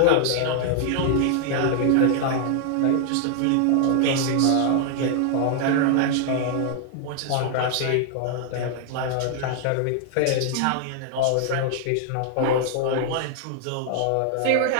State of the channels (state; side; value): different; both; correlation 0.00